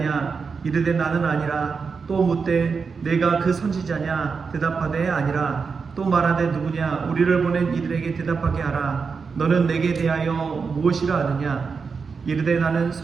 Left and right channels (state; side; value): quieter; left; 5.3 dB